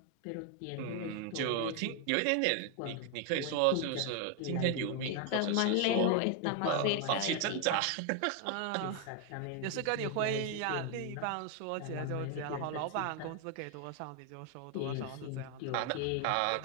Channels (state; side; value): different; both; correlation 0.01